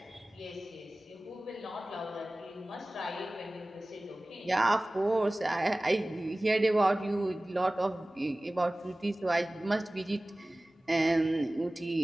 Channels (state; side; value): normal; both; correlation 0.98